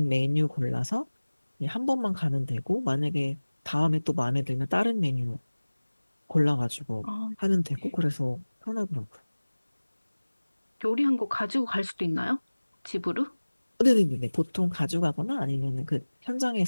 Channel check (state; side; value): inverted; both; correlation -1.00